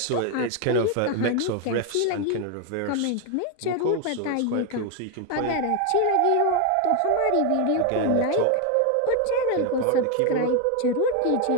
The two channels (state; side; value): different; both; correlation 0.01